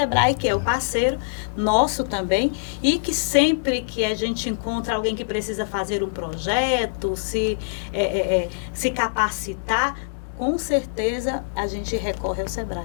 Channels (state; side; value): quieter; right; 38.3 dB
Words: que é o parceiro nosso também, e que sempre que a gente encontra alguém que precisa fazer um projeto, se capacitar, com certeza a gente recorre ao